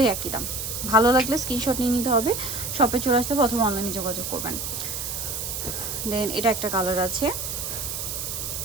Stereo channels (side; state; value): right; noise; hiss, 4 dB below the sound